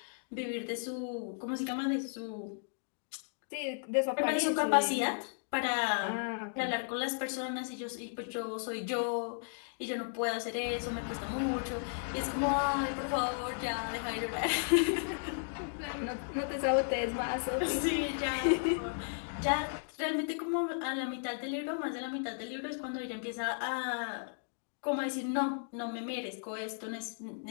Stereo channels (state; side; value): silent; right; digital silence